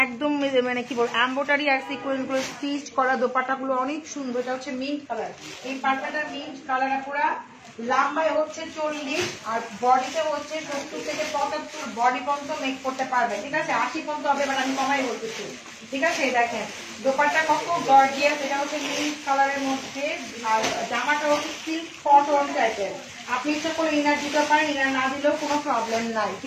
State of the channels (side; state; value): both; identical; correlation 1.00